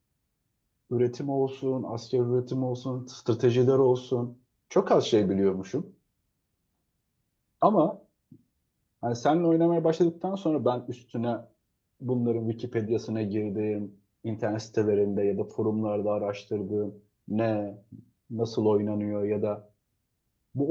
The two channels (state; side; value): identical; both; correlation 1.00